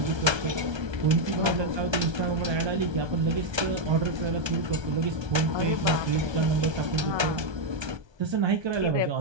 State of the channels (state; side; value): late; left; 1.3 ms